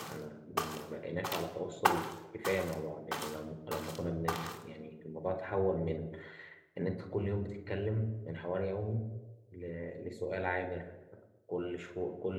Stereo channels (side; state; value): both; identical; correlation 1.00